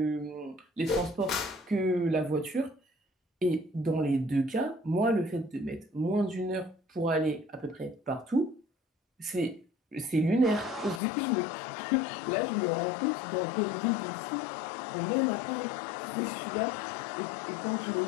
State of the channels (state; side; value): drops out; right; at 11.0 s